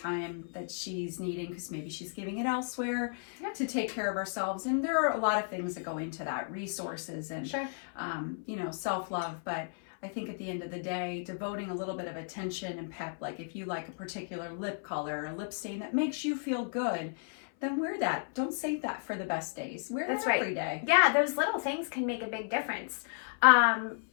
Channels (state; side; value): silent; right; 56 dB below the other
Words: that she's needing because maybe she's giving it elsewhere to take care of ourselves. And there are a lot of things that go into that, resources and self-love. But I think at the end of the day, devoting a little bit of attention and pep, like if you like a particular lip color or lip stain that makes you feel good, then wear that. Don't save that for the best days. Wear that every day. Yeah, those little things can make a big difference. And